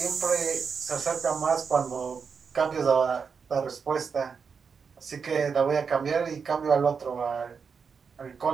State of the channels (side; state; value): left; quieter; 5.9 dB